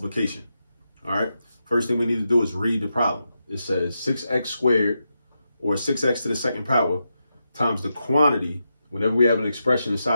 All right. First thing we need to do is read the problem. It says 6x squared, or 6x to the second power, times the quantity. Whenever we have an expression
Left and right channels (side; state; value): both; inverted; correlation -0.87